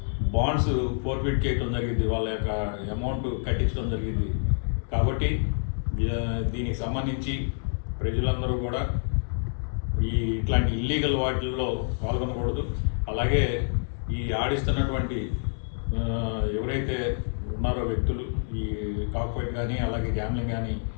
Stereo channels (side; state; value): right; silent; digital silence